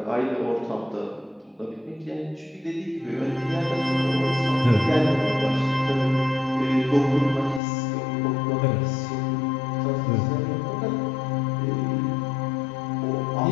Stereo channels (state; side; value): drops out; right; at 7.6 s